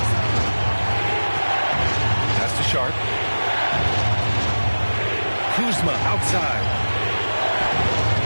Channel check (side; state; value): both; inverted; correlation -1.00